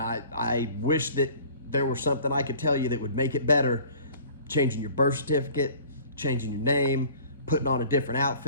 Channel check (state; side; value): inverted; both; correlation -0.49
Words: wish that there was something I could tell you that would make it better. Changing your birth certificate, changing your name, putting on a different